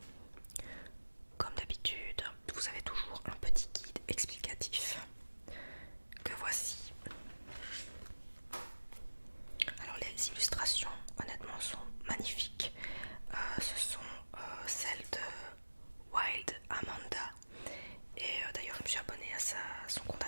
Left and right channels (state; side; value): inverted; both; correlation -1.00